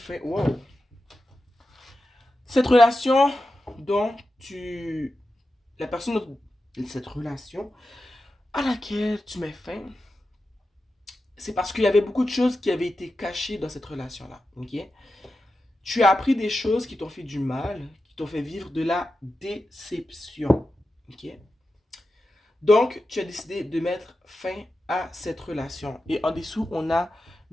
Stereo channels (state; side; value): normal; both; correlation 0.91